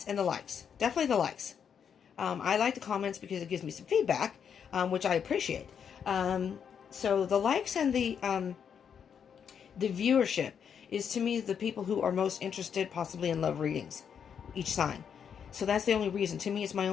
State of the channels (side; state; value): right; quieter; 7.6 dB